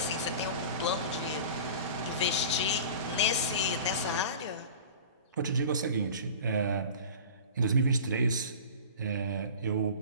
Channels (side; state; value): both; inverted; correlation -0.37